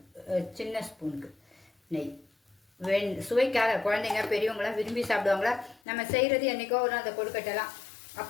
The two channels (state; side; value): drops out; right; at 5.8 s